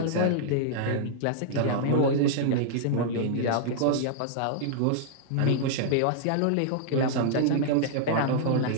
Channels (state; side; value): different; both; correlation -0.01